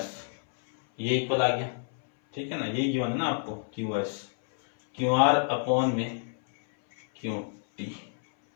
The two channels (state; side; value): silent; right; 59 dB below the other